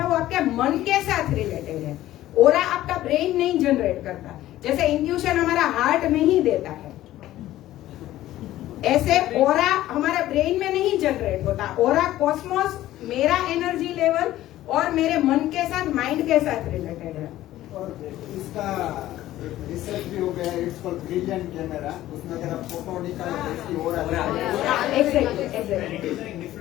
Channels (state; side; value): quieter; right; 14.5 dB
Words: वो आपके मन के साथ रिलेटेड है। ओरा आपका ब्रेन नहीं जनरेट करता, जैसे इंट्यूशन हमारा हार्ट में ही देता है, ऐसे ओरा हमारे ब्रेन में नहीं जनरेट होता। ओरा कॉस्मोस मेरा एनर्जी लेवल और मेरे मन के साथ, माइंड के साथ रिलेटेड है। और इसका रिसर्च भी हो गया, इट्स कॉल्ड ब्रिलियंट कैमरा, उसमें अगर आप फोटो निकालो तो इसकी और एग्जैक्टली।